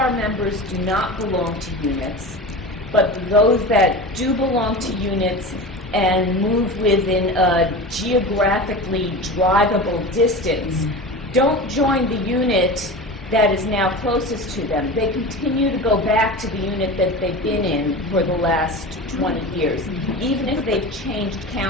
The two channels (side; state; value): both; normal; correlation 0.30